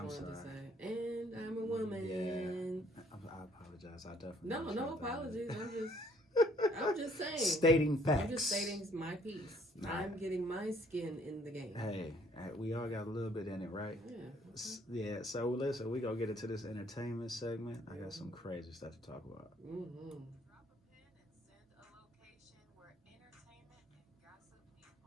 to say. And I'm a woman. Yeah. I apologize. I definitely. No apologies. I'm just saying. Stating facts. I'm just stating my piece. Nah. I'm getting my skin in the game. Hey, we all got a little bit in it, right? Yeah. Yeah, so listen, we gonna get into this entertainment segment. I got some crazy stuff to talk about. Drop a pin and send a location where entertainment and gossip meet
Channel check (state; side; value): normal; both; correlation 0.63